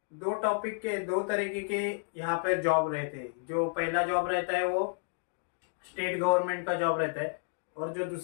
दो टॉपिक के दो तरीके के यहाँ पर जॉब रहते हैं। जो पहला जॉब रहता है वो स्टेट गवर्नमेंट का जॉब रहता है, और जो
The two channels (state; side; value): silent; right; digital silence